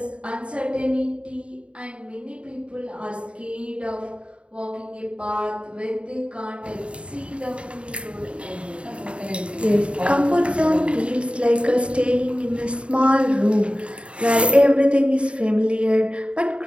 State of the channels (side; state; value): left; late; 0.059 ms